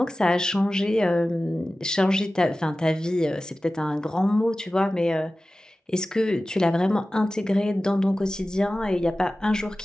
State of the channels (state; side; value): normal; both; correlation 0.96